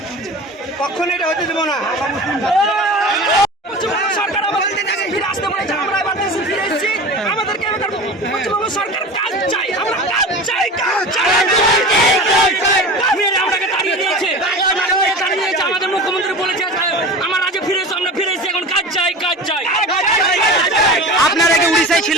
কখনো এটা হতে দেবো না। সরকার আমাদের দেশে ফিরে আসতে বলেছে, আমরা এবার দেশে ফিরে এসেছি। আমাদেরকে পশ্চিমবঙ্গ সরকার কাজ চাই, আমরা কাজ চাই, কাজ চাই। আমাদেরকে তাড়িয়ে দিয়েছে, আমাদের মুখ্যমন্ত্রী বলেছে আমার আজ ফিরে এসো, আমরা ফিরে এসেছি, এখন কাজ চাই, কাজ চাই। আপনারা কি উড়িষ্যায়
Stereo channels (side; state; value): both; normal; correlation 0.33